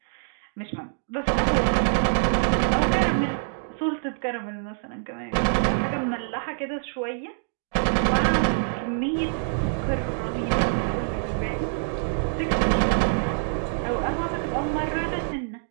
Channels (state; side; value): silent; left; digital silence